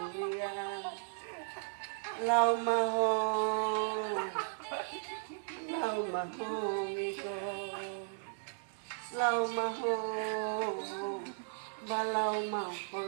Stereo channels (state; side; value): silent; left; digital silence